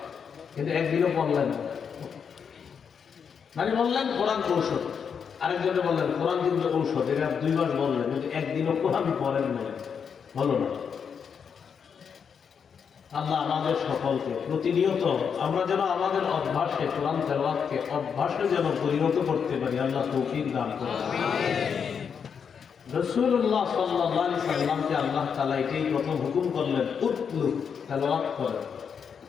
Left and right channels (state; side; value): quieter; right; 6.8 dB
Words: কিন্তু একদিনও বললেন না। মানে বললেন কোরআন ঔষধ, আরেকজনে বললেন কোরআন কিন্তু ঔষধ, এটা 2 মাস বললেন, কিন্তু একদিনও কোরআন পড়েন না, বলো না। আল্লাহ আমাদের সকলকে প্রতিনিয়ত আমরা যেন আমাদের অভ্যাসে কোরআন তেলাওয়াতকে অভ্যাসে যেন পরিণত করতে পারি, আল্লাহ তৌফিক দান করুন। রাসূলুল্লাহ সাল্লাল্লাহু আলাইহি সাল্লামকে আল্লাহ তাআলা এটাই প্রথম হুকুম করলেন, উতলু, তেলাওয়াত করেন।